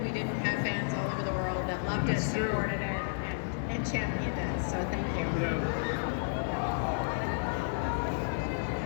we didn't have fans all over the world that loved it, supported it, and championed it. So thank you. Yeah.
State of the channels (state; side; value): silent; right; digital silence